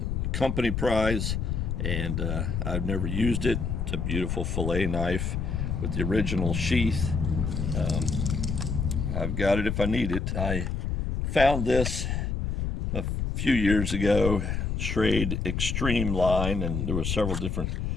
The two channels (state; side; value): noise; left; rumble, 1 dB below the sound